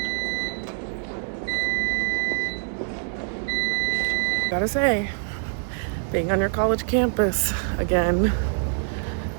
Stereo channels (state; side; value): silent; left; digital silence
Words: Gotta say, being on your college campus again